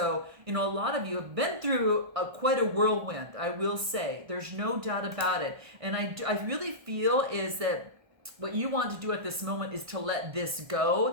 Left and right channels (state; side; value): late; left; 1.6 ms